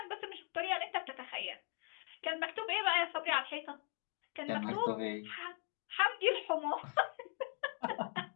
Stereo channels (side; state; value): right; quieter; 35.9 dB